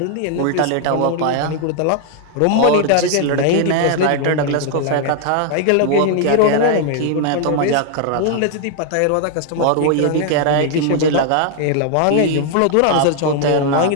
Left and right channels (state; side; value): different; both; correlation 0.00